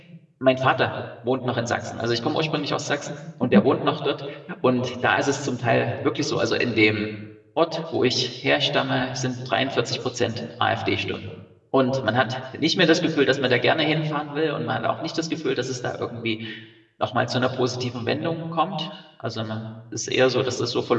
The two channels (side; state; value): both; identical; correlation 1.00